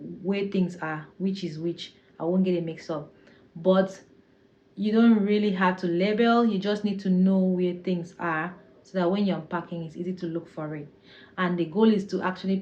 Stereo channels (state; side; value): identical; both; correlation 1.00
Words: things are, which is which. I won't get it mixed up. But you don't really have to label, you just need to know where things are so that when you're unpacking it's easy to look for it. And the goal is to actually